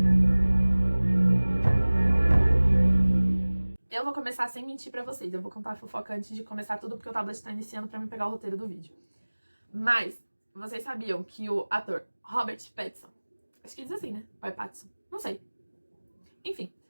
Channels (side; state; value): both; inverted; correlation -1.00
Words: Eu vou começar sem mentir pra vocês. Eu vou contar a fofoca antes de começar tudo, porque o tablet tá iniciando pra me pegar o roteiro do vídeo. Mas, vocês sabiam que o ator Robert Pattinson, acho que diz assim, né? Ou é Pattinson? Não sei. Enfim,